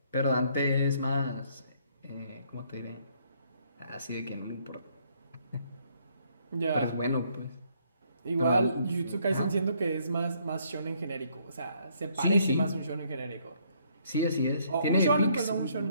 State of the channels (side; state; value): both; inverted; correlation -0.67